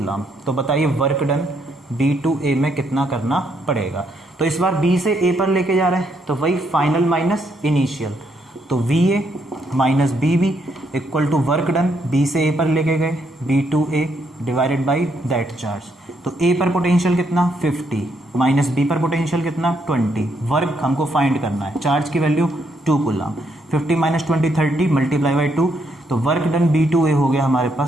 तो बताइए वर्क डन बी टू ए में कितना करना पड़ेगा। तो इस बार बी से ए पर लेके जा रहे हैं, तो वही फाइनल माइनस इनिशियल। तो V A minus B B equal to work done, B से ए पर लेके गए B to A divided by that charge. तो ए पर पोटेंशियल कितना 50 माइनस बी पर पोटेंशियल कितना 20, वर्क हमको फाइंड करना है, चार्ज की value 2 coulomb. 50 minus 20 30 multiply by 2, तो वर्क डन बी टू ए हो गया हमारे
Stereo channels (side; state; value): both; normal; correlation 0.75